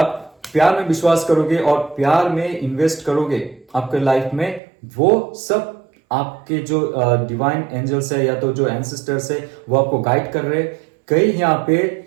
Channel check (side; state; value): left; drops out; at 4.6 s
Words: प्यार में विश्वास करोगे और प्यार में इन्वेस्ट करोगे आपके लाइफ में, वो सब आपके जो डिवाइन एंजल्स है या तो जो एंसेस्टर्स है, वो आपको गाइड कर रहे हैं। कई यहाँ पे